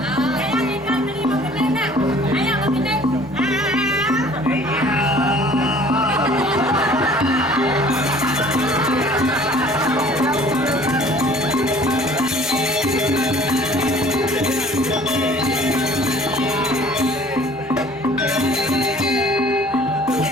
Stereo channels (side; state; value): both; normal; correlation 0.52